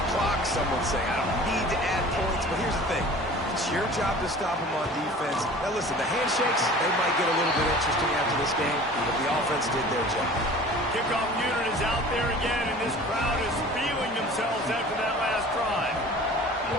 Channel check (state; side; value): normal; both; correlation 0.43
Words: clock. Some would say I don't need to add points. But here's the thing. It's your job to stop them on defense. Now listen, the handshakes, they might get a little bit interesting after this game, but the offense did their job. Kickoff unit is out there again, and this crowd is feeling themselves after that last drive.